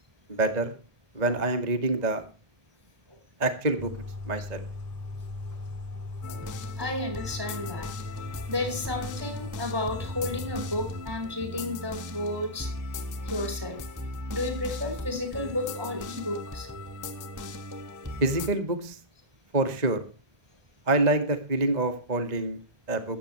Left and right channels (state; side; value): late; left; 1.2 ms